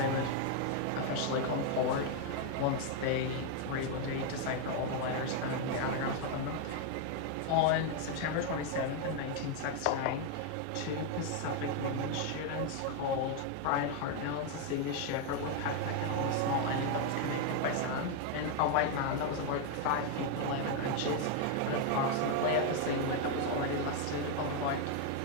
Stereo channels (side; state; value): both; different; correlation 0.01